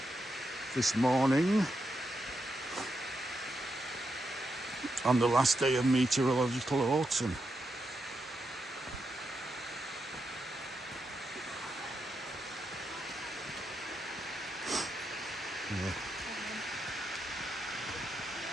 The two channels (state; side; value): normal; both; correlation 0.84